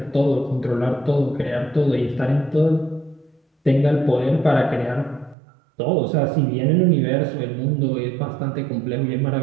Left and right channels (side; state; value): left; drops out; at 5.4 s